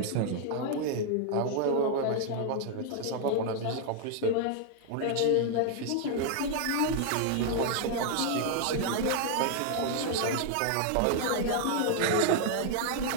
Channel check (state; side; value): different; both; correlation 0.00